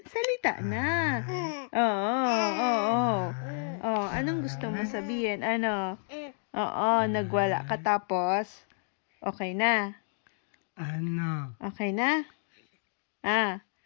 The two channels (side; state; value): right; silent; digital silence